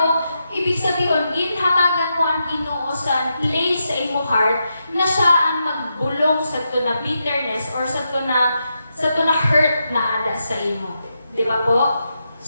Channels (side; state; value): both; inverted; correlation -0.85